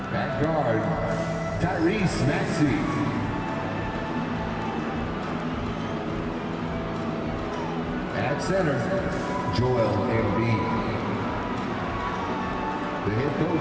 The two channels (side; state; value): both; identical; correlation 1.00